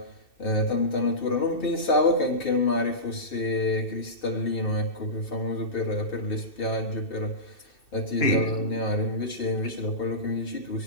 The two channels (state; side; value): late; right; 2.6 ms